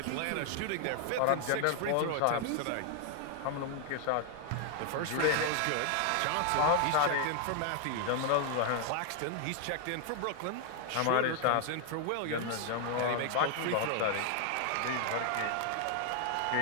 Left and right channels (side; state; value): both; different; correlation 0.00